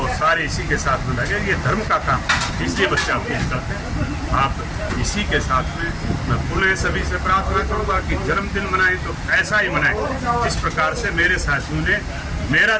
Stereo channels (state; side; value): identical; both; correlation 1.00